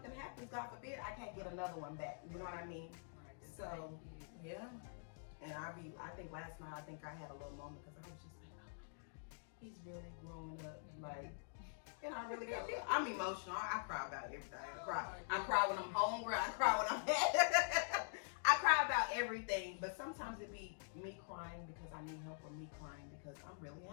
happens, God forbid, I can't get another one back. You know what I mean? Right. So yeah. And I think last night I had a little moment because I was just like, oh my God, he's really growing up. Like, and I really got, I'm emotional. I cry about everything. I cry when I'm hungry. I cry when I'm mad. I cry about everything, but sometimes it be me crying because I need help or me crying because I'm really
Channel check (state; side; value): silent; right; digital silence